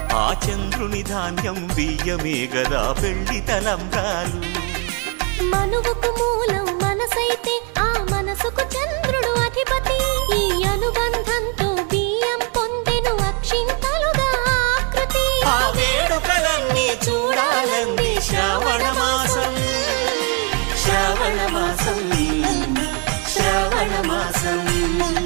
ఆ చంద్రుని ధాన్యం బియ్యమే గదా పెళ్లి తలంబ్రాలు మనువుకు మూలం మనసైతే ఆ మనసుకు చంద్రుడు అధిపతి ఈ అనుబంధంతో బియ్యం పొందెను అక్షింతలుగా ఆకృతి ఆ వేడుకలన్నీ చూడాలంది శ్రావణ మాసం శ్రావణ మాసం శ్రావణ మాసం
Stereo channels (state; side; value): quieter; left; 35.5 dB